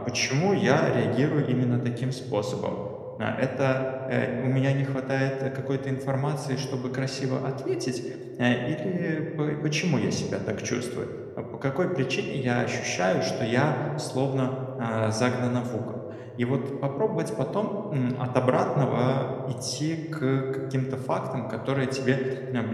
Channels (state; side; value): identical; both; correlation 1.00